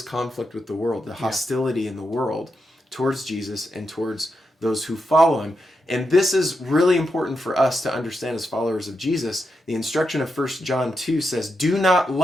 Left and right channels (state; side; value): normal; both; correlation 0.85